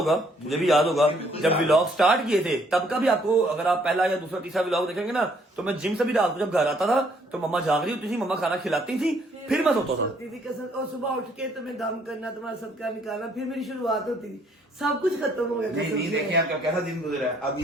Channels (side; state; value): both; normal; correlation 0.65